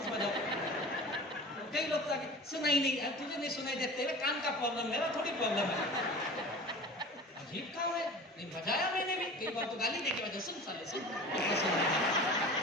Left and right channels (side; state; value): both; normal; correlation 0.38